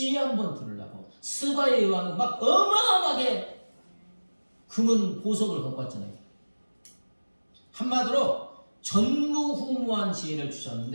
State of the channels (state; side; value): inverted; both; correlation -1.00